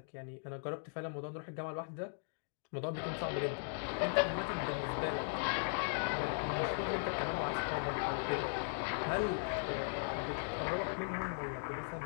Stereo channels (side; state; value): right; silent; digital silence